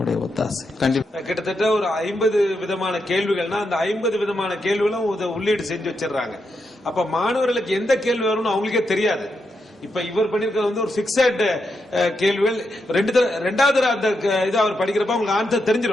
ஒத்தாசை. கண்டிப்பா கிட்டத்தட்ட ஒரு 50 விதமான கேள்விகள்னா அந்த 50 விதமான கேள்விகளும் உள்ளீடு செஞ்சு வச்சிடறாங்க. அப்ப மாணவர்களுக்கு எந்த கேள்வி வரும்னு அவங்களுக்கே தெரியாது. இப்ப இவர் பண்ணிருக்கிறது ஒரு பிக்சட் கேள்விகள். ரெண்டாவது அந்த இது அவர் படிக்கிறப்ப உங்களுக்கு ஆன்சர்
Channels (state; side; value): normal; both; correlation 0.84